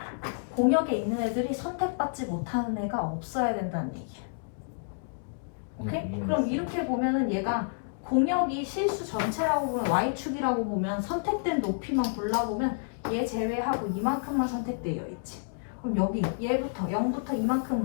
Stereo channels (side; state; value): right; silent; digital silence